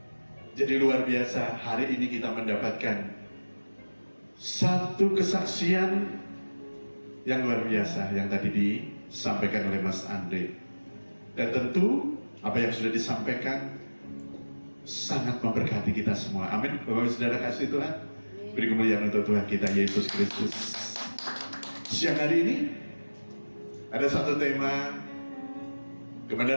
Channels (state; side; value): inverted; both; correlation -1.00